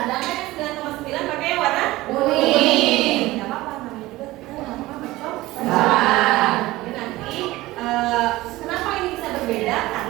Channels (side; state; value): left; quieter; 18.4 dB